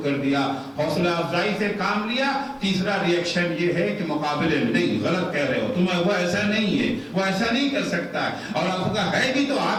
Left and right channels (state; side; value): identical; both; correlation 1.00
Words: کر دیا، حوصلہ افزائی سے کام لیا۔ تیسرا ریئیکشن یہ ہے کہ مقابلے میں نہیں، غلط کہہ رہے ہو تم، وہ ایسا نہیں ہے، وہ ایسا نہیں کر سکتا ہے، اور آپ کا ہے بھی تو